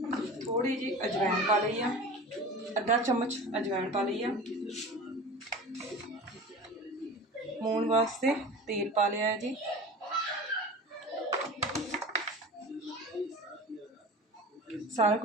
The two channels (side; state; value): both; normal; correlation 0.35